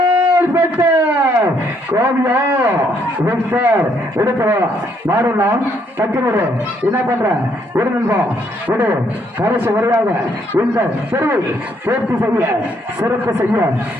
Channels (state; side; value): normal; both; correlation 0.70